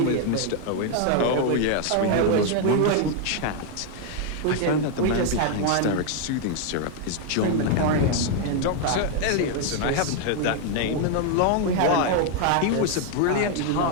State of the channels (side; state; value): both; different; correlation 0.01